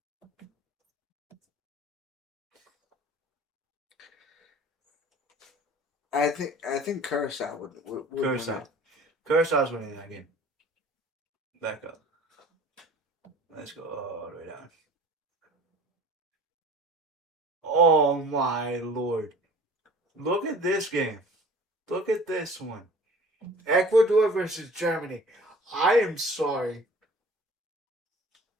I think Curacao would win Curacao. it. Curaçao's winning that game. Back up. Let's go all the way down. Oh my lord. Look at this game. Look at this one. Ecuador versus Germany. I am sorry.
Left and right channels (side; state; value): both; normal; correlation 0.45